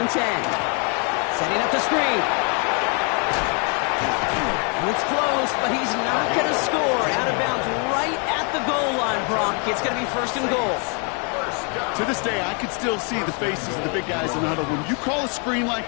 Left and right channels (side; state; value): right; quieter; 37.0 dB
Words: and 10. Setting up the screen. And it's close, but he's not going to score. Out of bounds right at the goal line, Brock. It's going to be 1st and goal. To this day, I can still see the faces of the big guys in the huddle. When you call a screen